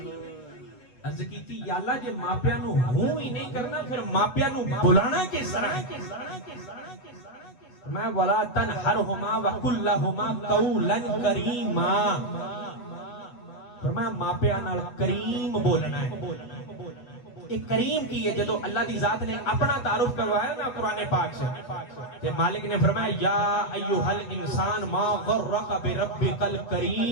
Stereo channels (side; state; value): right; late; 8.0 ms